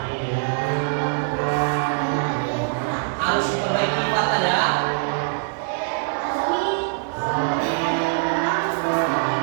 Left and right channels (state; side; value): silent; left; digital silence